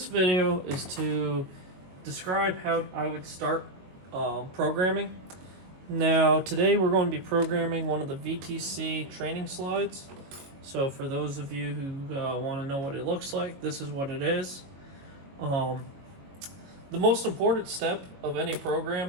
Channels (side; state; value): left; late; 22 ms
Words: video is to describe how I would start programming. Now, today we're going to be programming one of the VTC training slides. So for those of you who want to know what it looks like, this is what it is. The most important step of any